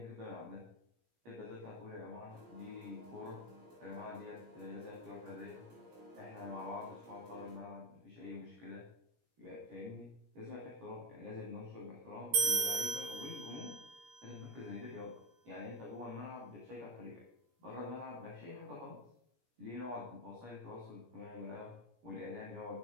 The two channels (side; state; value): left; late; 17 ms